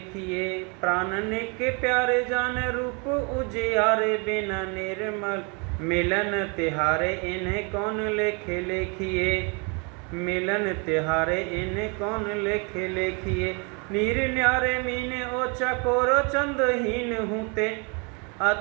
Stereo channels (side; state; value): left; quieter; 33.6 dB